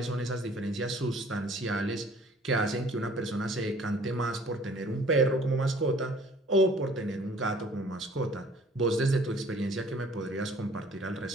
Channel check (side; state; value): both; normal; correlation 0.54